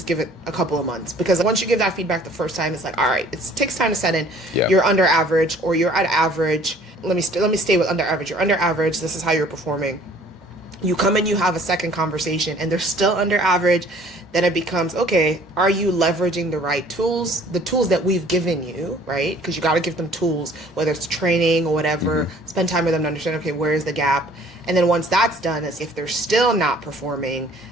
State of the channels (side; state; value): both; normal; correlation 0.54